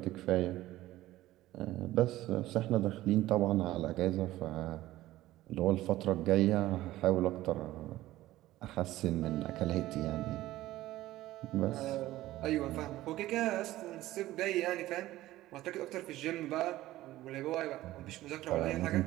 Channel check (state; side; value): quieter; left; 15.9 dB